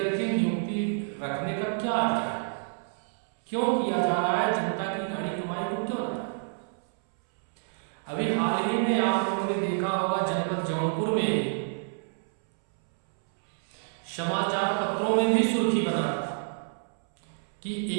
नियुक्ति रखने का क्या अधिकार है? क्यों किया जा रहा है? जनता की गाड़ी कमाई को क्यों जा रहा है? अभी हाल ही में आप लोगों ने देखा होगा, जनपद जौनपुर में समाचार पत्रों में भी सुर्खी बना था कि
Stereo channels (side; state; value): left; silent; 59 dB below the other